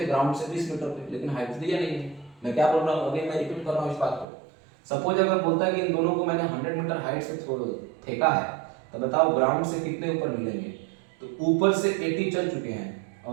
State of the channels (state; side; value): drops out; left; at 4.2 s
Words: ग्राउंड से 20 मीटर पे, लेकिन हाइट दिया नहीं है। मैं क्या बोल रहा हूँ, अभी मैं रिपीट कर रहा हूँ इस बात को। सपोज अगर बोलता है कि इन दोनों को मैंने 100 मीटर हाइट से फेंका है, तो बताओ ग्राउंड से कितने ऊपर मिलेंगे। तो ऊपर से 80 चल चुके हैं